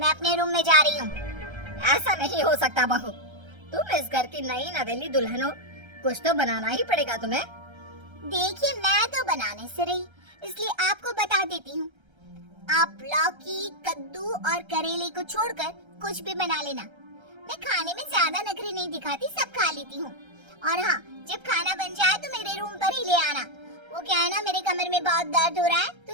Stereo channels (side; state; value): left; late; 1.3 ms